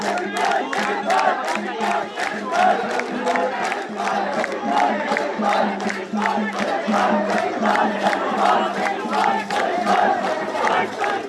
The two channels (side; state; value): both; identical; correlation 1.00